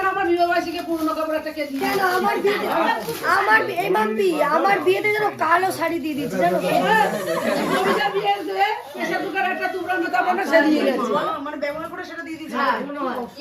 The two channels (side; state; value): both; identical; correlation 1.00